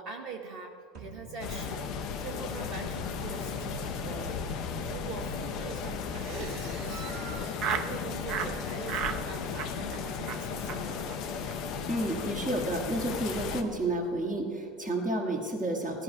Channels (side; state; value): both; normal; correlation 0.37